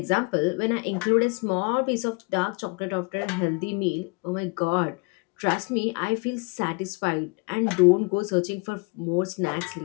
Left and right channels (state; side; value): quieter; right; 31.5 dB